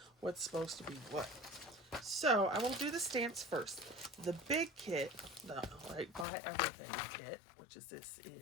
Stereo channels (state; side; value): drops out; right; at 6.2 s